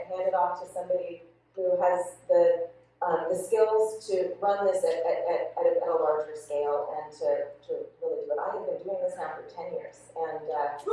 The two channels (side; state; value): both; identical; correlation 1.00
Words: hand it off to somebody who has the skills to run this at a larger scale and to really do it. I have been doing this now for 10 years, and